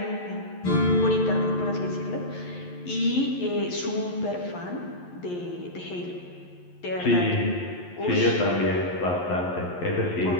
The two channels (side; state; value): right; late; 11 ms